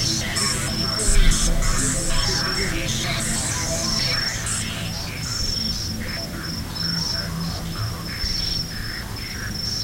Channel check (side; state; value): both; identical; correlation 1.00